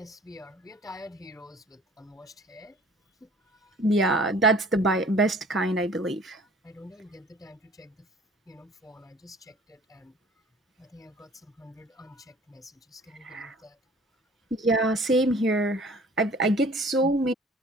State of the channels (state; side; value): normal; both; correlation 0.50